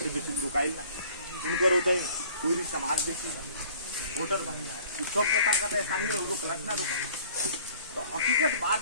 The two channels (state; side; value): inverted; both; correlation -0.53